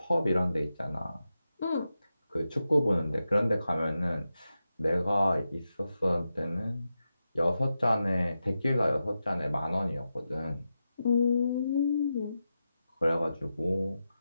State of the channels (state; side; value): inverted; both; correlation -0.90